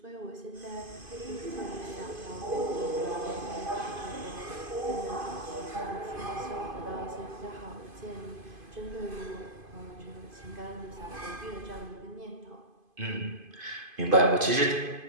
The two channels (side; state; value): left; late; 2.5 ms